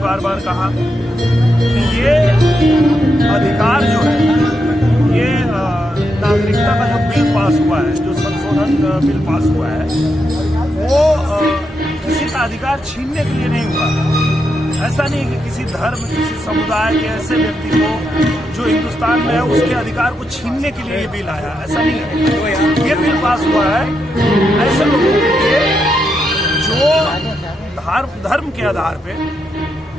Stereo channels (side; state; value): both; normal; correlation 0.83